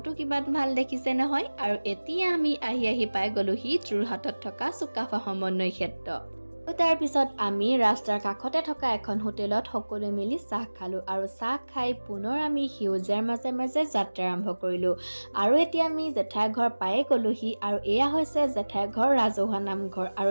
কিমান ভাল দেখিছে নহয়। আৰু এতিয়া আমি আহি পাই গলোহি যোৰহাটত থকা চুকাফা সমন্বয় ক্ষেত্ৰ। তাৰ পিছত আমি ৰাস্তাৰ কাষতে থকা এখন হোটেলত সকলো মিলি চাহ খালো আৰু চাহ খাই পুনৰ আমি সেউজীয়াৰ মাজে মাজে যাত্ৰা আৰম্ভ কৰিলো। আৰু এতিয়া আমি জেঠাই ঘৰ পায়ে গলোহি আৰু এয়া হৈছে জেঠাই ঘৰ ৰাজহুৱা নামঘৰ। আৰু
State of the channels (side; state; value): both; inverted; correlation -1.00